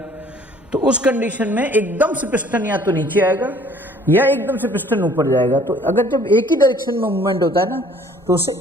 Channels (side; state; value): both; normal; correlation 0.56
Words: तो उस कंडीशन में एकदम से पिस्टन या तो नीचे आएगा या एकदम से पिस्टन ऊपर जाएगा। तो अगर जब एक ही डायरेक्शन में मूवमेंट होता है ना तो उसे